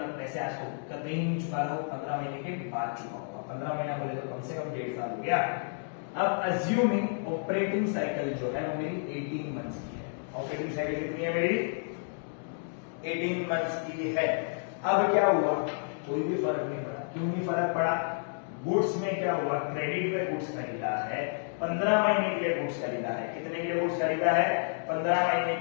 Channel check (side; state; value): right; silent; digital silence